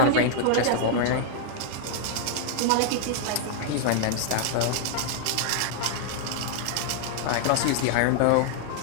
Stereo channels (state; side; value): different; both; correlation -0.01